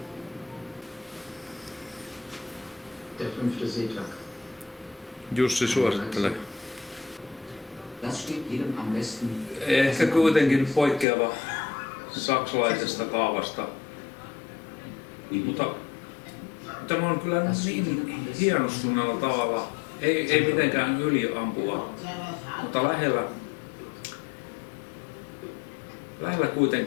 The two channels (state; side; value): drops out; right; at 11.1 s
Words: Der 5. Seetag. Jussi suosittelee. Das steht jedem am besten. Ehkä kuitenkin poikkeava saksalaisesta kaavasta. Mutta tämä on kyllä niin hienostuneella tavalla. Ei mitenkään yliampua, mutta lähellä